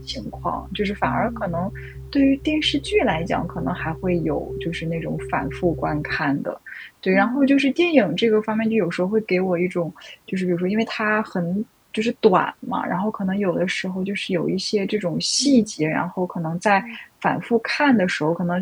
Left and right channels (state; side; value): identical; both; correlation 1.00